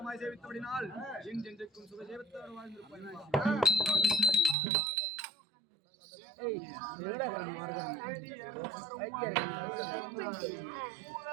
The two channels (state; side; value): drops out; left; at 4.5 s